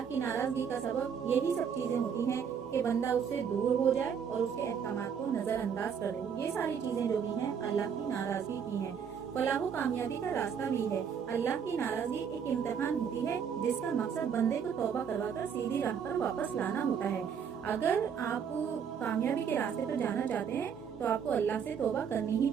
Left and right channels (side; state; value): left; quieter; 7.3 dB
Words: کی ناراضگی کا سبب یہی سب چیزیں ہوتی ہیں کہ بندہ اس سے دور ہو جائے اور اس کے احکامات کو نظر انداز کر دے۔ یہ ساری چیزیں جو بھی ہیں اللہ کی ناراضگی کی ہیں۔ فلاح و کامیابی کا راستہ بھی ہے۔ اللہ کی ناراضگی ایک امتحان ہوتی ہے جس کا مقصد بندے کو توبہ کروا کر سیدھی راہ پر واپس لانا ہوتا ہے۔ اگر آپ کامیابی کے راستے پر جانا چاہتے ہیں تو آپ کو اللہ سے توبہ کرنی ہی